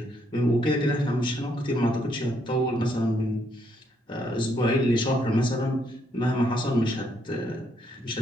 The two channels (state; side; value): normal; both; correlation 0.73